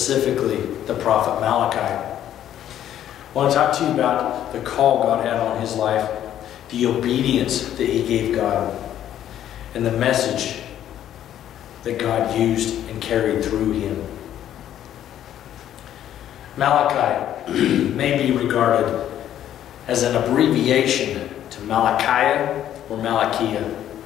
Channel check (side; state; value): right; quieter; 11.2 dB